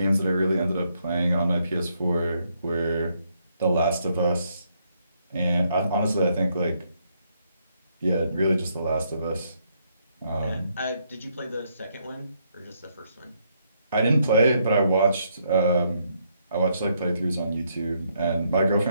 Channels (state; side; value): inverted; both; correlation -0.74